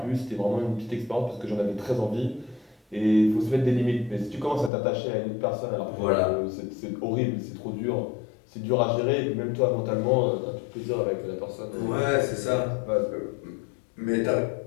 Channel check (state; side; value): drops out; right; at 4.7 s